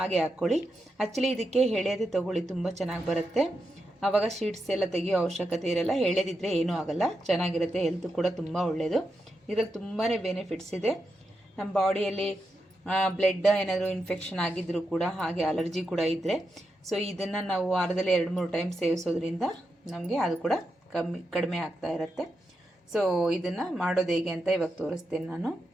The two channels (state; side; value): normal; both; correlation 0.86